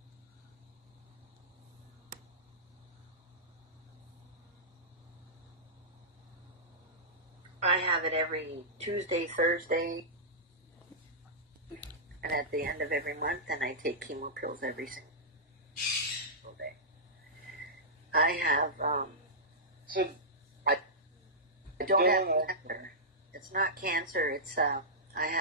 I have it every Tuesday, Thursday, and at the end of every month, and I take chemo pills every single day. I have, So, I don't have cancer. It's not cancer, it's, I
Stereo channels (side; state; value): both; normal; correlation -0.15